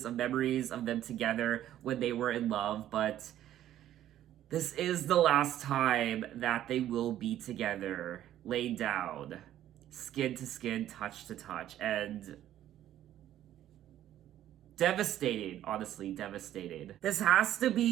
of memories of them together when they were in love, but this is the last time that they will be together, laid down, skin to skin, touch to touch, and devastating, honestly, devastating. This has to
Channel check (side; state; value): left; quieter; 12.2 dB